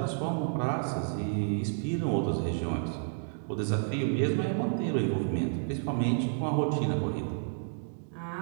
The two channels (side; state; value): left; silent; digital silence